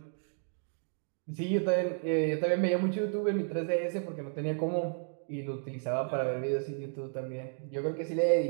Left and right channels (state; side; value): silent; left; 56 dB below the other